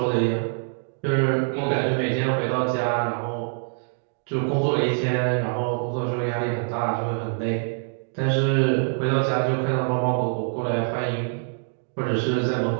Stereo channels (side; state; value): left; silent; 60 dB below the other